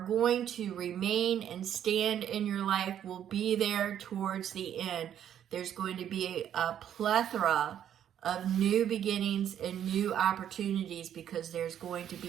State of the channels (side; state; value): left; quieter; 10.0 dB